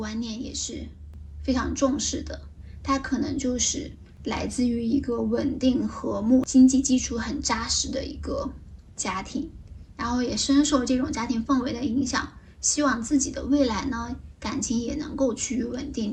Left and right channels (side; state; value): both; identical; correlation 1.00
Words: 念也是非常重视的。他可能就是来自于一个稳定和睦、经济基础很扎实的一个家庭，然后也深受这种家庭氛围的影响，希望自己的未来呢，感情也能够趋于稳